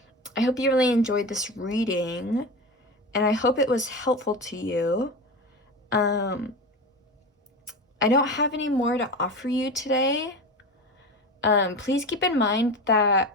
hope you really enjoyed this reading, and I hope it was helpful to you. I don't have any more to offer you today. Please keep in mind that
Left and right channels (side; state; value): both; normal; correlation 0.26